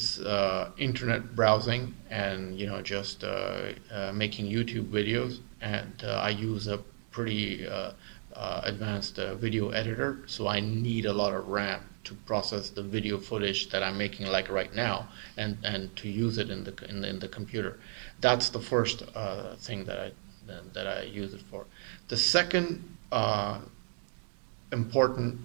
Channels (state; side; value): silent; left; 55 dB below the other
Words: internet browsing and just making YouTube videos, and I use a pretty advanced video editor, so I need a lot of RAM to process the video footage that I'm making like right now, and to use it in the computer. That's the first thing that I use it for. The second important